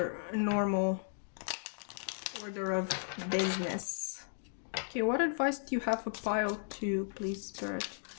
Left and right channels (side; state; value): right; silent; digital silence